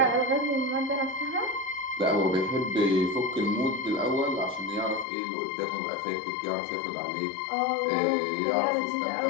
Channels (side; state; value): right; drops out; at 5.1 s